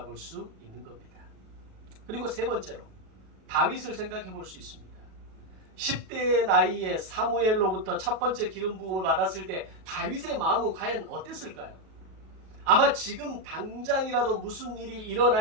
수 있는 겁니다. 그리고 세 번째로 다윗을 생각해 볼 수 있습니다. 10대의 나이에 사무엘로부터 첫 번째 기름 부음을 받았을 때 다윗의 마음은 과연 어땠을까요? 아마 지금 당장이라도 무슨 일이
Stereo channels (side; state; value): left; late; 37 ms